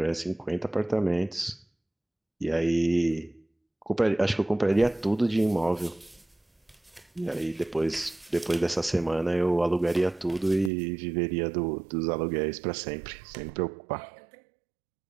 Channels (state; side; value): drops out; left; at 10.7 s